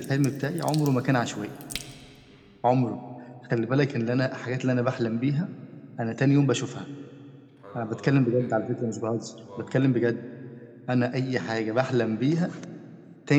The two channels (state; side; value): identical; both; correlation 1.00